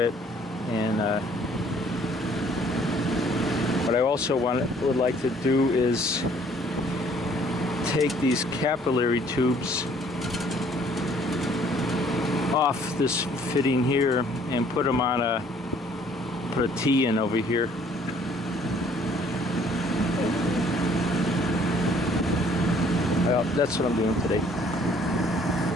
and. What I also would like to do is take these capillary tubes off this fitting here and put them on put a T in over here. Well, that's what I'm doing today.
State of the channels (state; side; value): normal; both; correlation 0.59